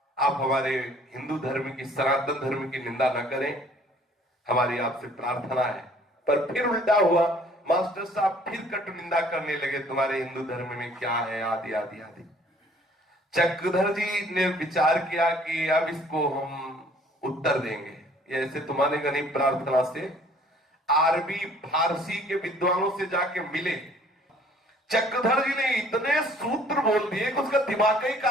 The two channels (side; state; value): both; normal; correlation 0.56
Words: आप हमारे हिंदू धर्म की, सनातन धर्म की निंदा न करें, हमारी आपसे प्रार्थना है। पर फिर उल्टा हुआ, मास्टर साहब फिर कटु निंदा करने लगे, तुम्हारे हिंदू धर्म में क्या है, आदि आदि आदि। चक्रधर जी ने विचार किया कि अब इसको हम उत्तर देंगे, ऐसे तुम्हारे गरीब प्रार्थना से अरबी फारसी के विद्वानों से जाके मिले। चक्रधर जी ने इतने सूत्र बोल दिए कि उसका दिमाग ही